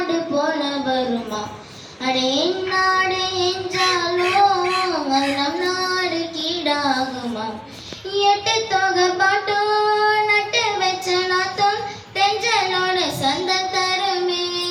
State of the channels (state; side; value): identical; both; correlation 1.00